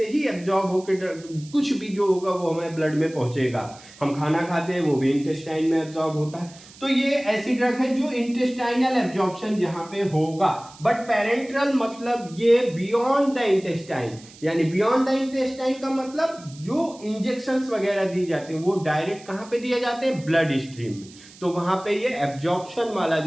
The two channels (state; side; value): noise; right; hiss, 21 dB below the sound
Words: ही एब्जॉर्ब होके कुछ भी जो होगा वो हमारे ब्लड में पहुंचेगा। हम खाना खाते हैं वो भी इंटेस्टाइन में एब्जॉर्ब होता है। तो ये ऐसी ड्रग है जो इंटेस्टाइनल एब्जॉर्प्शन यहाँ पे होगा। बट पैरेंट्रल मतलब ये बियॉन्ड द इंटेस्टाइन, यानी बियॉन्ड द इंटेस्टाइन का मतलब जो इंजेक्शंस वगैरह दी जाते हैं वो डायरेक्ट कहाँ पे दिए जाते हैं? ब्लड स्ट्रीम में। तो वहां पे ये एब्जॉर्प्शन वाला